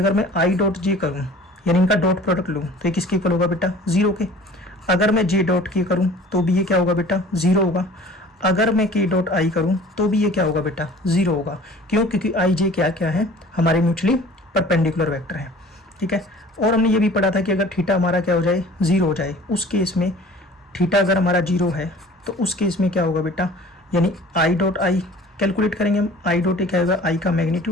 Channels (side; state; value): both; normal; correlation 0.47